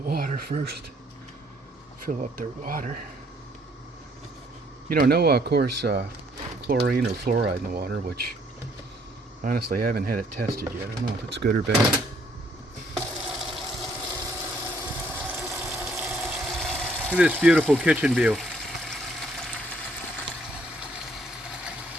water first. Fill up their water. You know, no, of course, chlorine or fluoride in the water, which honestly I haven't had it tested yet. I don't know if it's good or bad. Look at this beautiful kitchen view.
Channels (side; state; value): both; normal; correlation 0.65